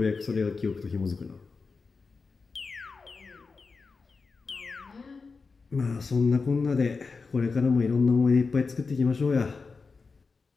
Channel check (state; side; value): quieter; right; 4.5 dB